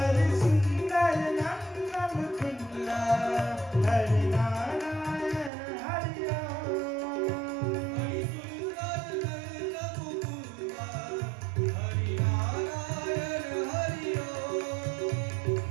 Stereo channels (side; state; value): left; drops out; at 5.5 s